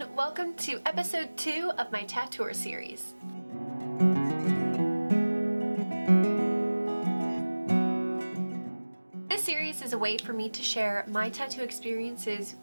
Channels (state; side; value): inverted; both; correlation -1.00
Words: welcome to episode 2 of my Tattour series. This series is a way for me to share my tattoo experiences